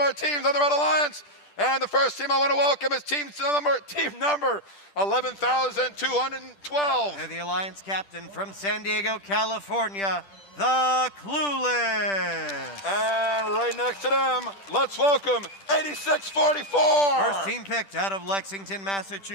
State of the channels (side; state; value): right; late; 10 ms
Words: teams on the Red Alliance. And the first team I want to welcome is team number 11,212. And the Alliance captain from San Diego, California, the Clueless. And right next to them, let's welcome 8644. First team picked out of Lexington,